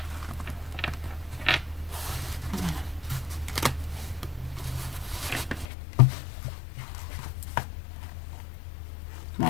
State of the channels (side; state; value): right; drops out; at 5.7 s